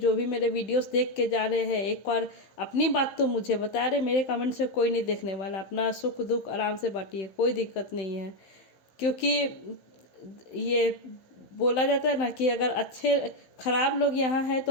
भी मेरे वीडियोस देख के जा रहे हैं एक बार अपनी बात तो मुझे बता रहे। मेरे कमेंट से कोई नहीं देखने वाला, अपना सुख दुख आराम से बांटिए, कोई दिक्कत नहीं है। क्योंकि ये बोला जाता है ना कि अगर खराब लोग यहाँ हैं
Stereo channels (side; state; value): right; late; 15 ms